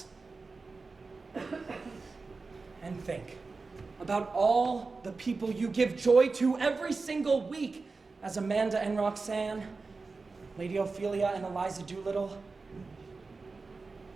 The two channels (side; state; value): left; quieter; 4.0 dB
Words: And think about all the people you give joy to every single week as Amanda and Roxanne, Lady Ophelia and Eliza Doolittle.